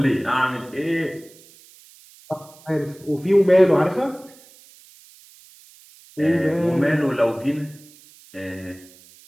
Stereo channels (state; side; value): noise; right; hiss, 25 dB below the sound